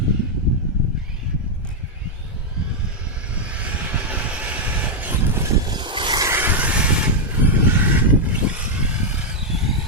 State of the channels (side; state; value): both; normal; correlation 0.00